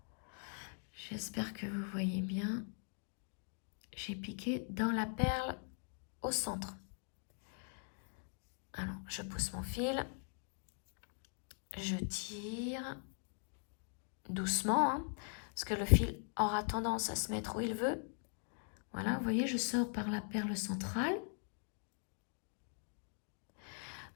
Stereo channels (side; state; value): right; silent; 50 dB below the other